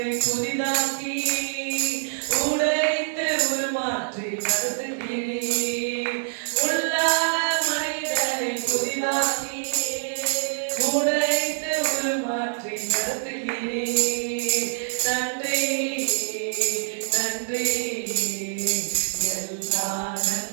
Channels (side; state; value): left; silent; digital silence